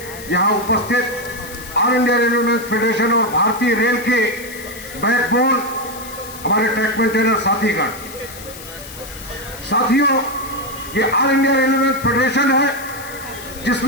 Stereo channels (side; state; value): left; noise; hiss, 15 dB below the sound